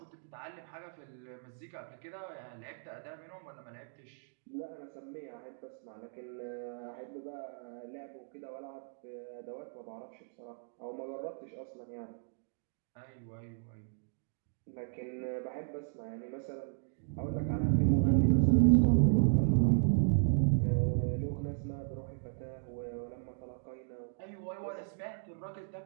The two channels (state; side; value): silent; left; digital silence